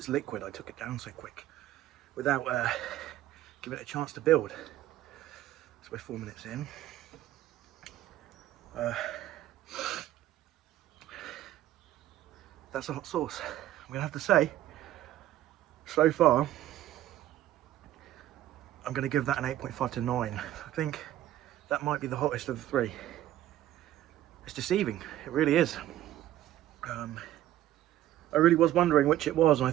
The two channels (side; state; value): left; quieter; 13.5 dB